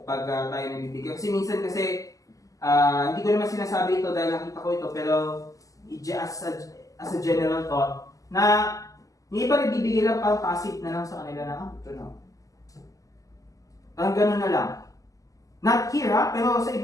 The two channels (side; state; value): right; late; 0.17 ms